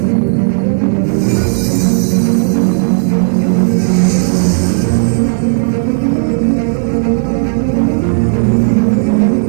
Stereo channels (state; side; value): silent; left; digital silence